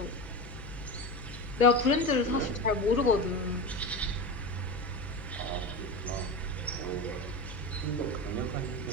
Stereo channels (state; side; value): noise; left; hum, 13 dB below the sound